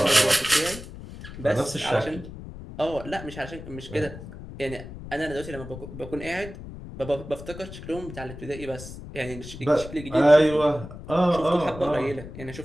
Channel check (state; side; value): noise; left; rumble, 13 dB below the sound